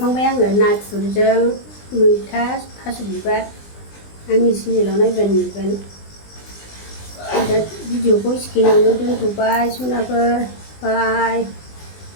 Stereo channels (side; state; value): right; late; 20 ms